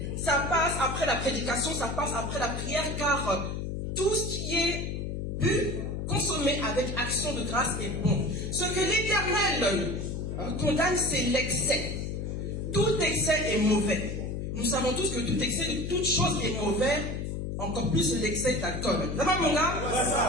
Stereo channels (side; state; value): left; noise; hum, 4 dB below the sound